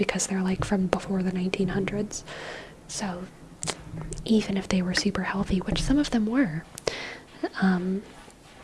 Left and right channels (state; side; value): identical; both; correlation 1.00